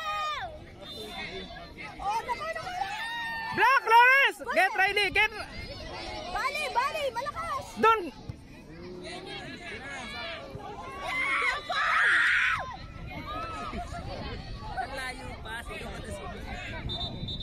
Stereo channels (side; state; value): both; identical; correlation 1.00